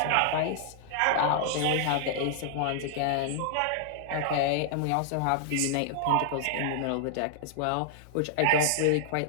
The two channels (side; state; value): both; different; correlation -0.01